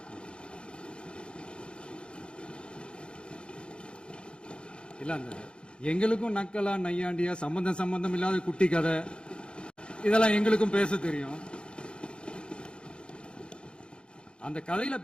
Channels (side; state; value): right; late; 0.054 ms